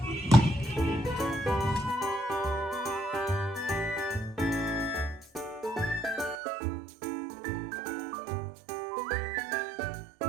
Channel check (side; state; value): left; drops out; at 6.4 s